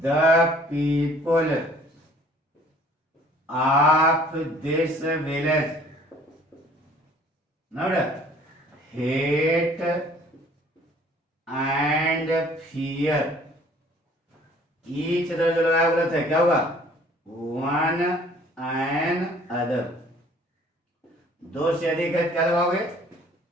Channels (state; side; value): normal; both; correlation 0.55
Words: The people of this village hate and fear each other. जो लगाया गलत है, क्या होगा? One and other. दो से अधिक है, क्या लगाओगे?